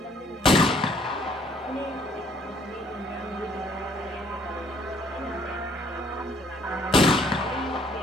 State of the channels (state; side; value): normal; both; correlation 0.63